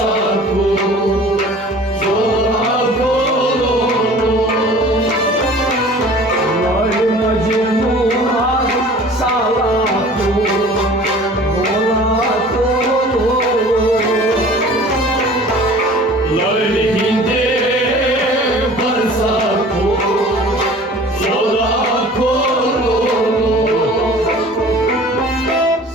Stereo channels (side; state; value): both; normal; correlation 0.46